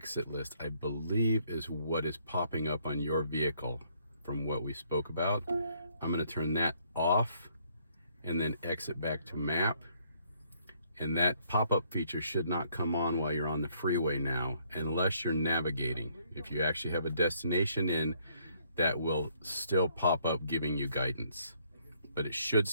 list, I believe, is what is popping up on your vehicle from what we spoke about. I'm going to turn that off and then exit back to map. And that pop-up feature should not come on while you're on the freeway now, unless you're navigating. If you actually have a destination in, that will still pop up giving you guidance. But it should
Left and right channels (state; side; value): inverted; both; correlation -0.67